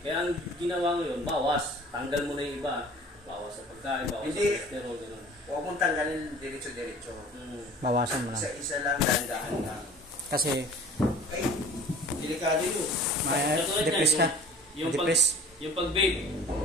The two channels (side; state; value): both; normal; correlation 0.45